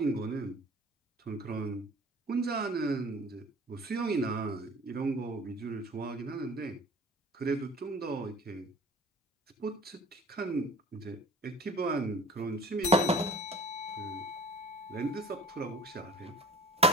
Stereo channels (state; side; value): normal; both; correlation 0.45